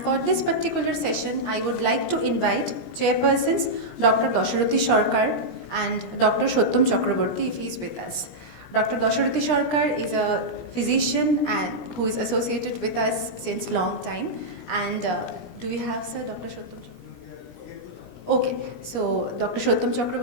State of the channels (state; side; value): late; right; 17 ms